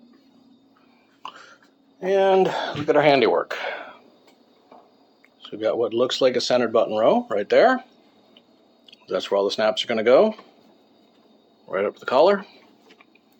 And look at our handiwork. So we've got what looks like a centered button row right there. That's where all the snaps are going to go. Right up the collar.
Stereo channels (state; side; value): identical; both; correlation 1.00